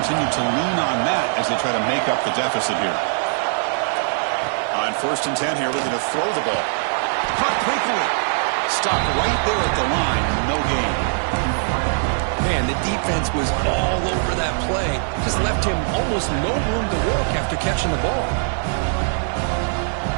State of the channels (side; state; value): left; silent; digital silence